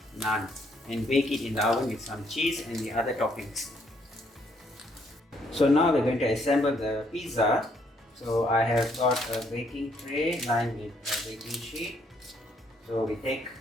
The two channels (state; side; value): normal; both; correlation 0.70